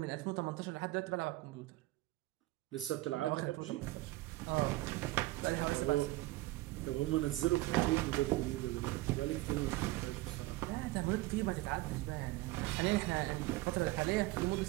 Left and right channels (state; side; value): quieter; left; 19.2 dB